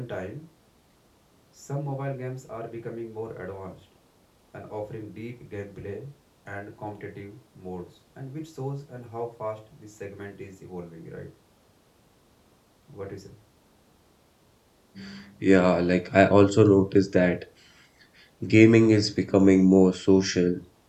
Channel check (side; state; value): both; identical; correlation 1.00